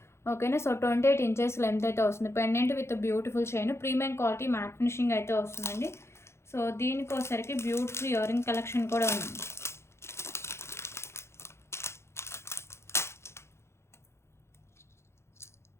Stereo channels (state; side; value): late; right; 0.13 ms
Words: ఓకేనా. సో 28 ఇంచెస్ లెంత్ అయితే వస్తుంది. Pendant with beautiful chain, premium quality matte finishing అయితే వస్తుందండి. సో దీనికి వచ్చరికి బ్యూటిఫుల్ ఇయర్ రింగ్ కలెక్షన్ కూడా ఉంది.